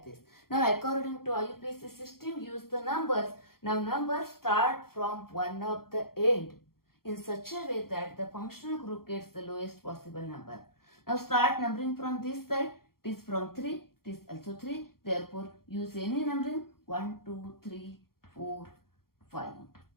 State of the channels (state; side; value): late; right; 0.93 ms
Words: this. Now according to IUPAC system, use the numbers. Now numbers start from one of the end in such a way that the functional group gets the lowest possible number. Now start numbering from this side. It is from 3, it is also 3, therefore use any numbering 1, 2, 3, 4, 5.